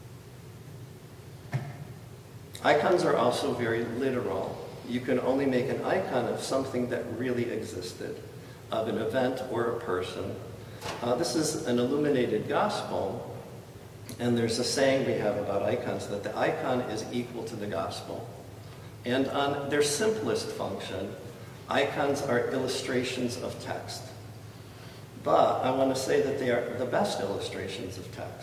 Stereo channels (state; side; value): identical; both; correlation 1.00